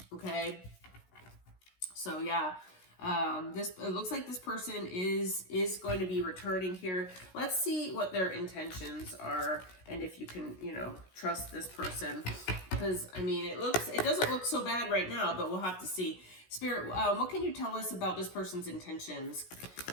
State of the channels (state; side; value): late; right; 16 ms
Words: Okay. So yeah, it looks like this person is going to be returning here. Let's see what their intentions are, and if you can, trust this person, because it doesn't look so bad right now, but we'll have to see. Spirit, what can you tell us about this person's intentions?